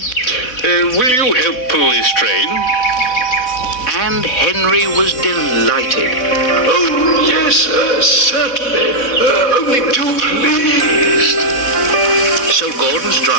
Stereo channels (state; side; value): late; right; 4.1 ms